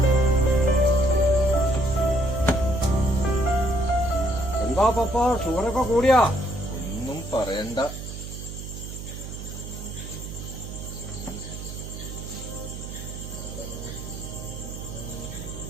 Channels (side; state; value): right; noise; hum, 9 dB below the sound